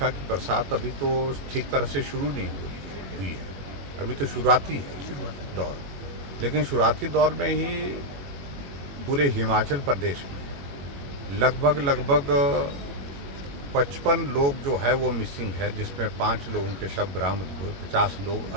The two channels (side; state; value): left; late; 21 ms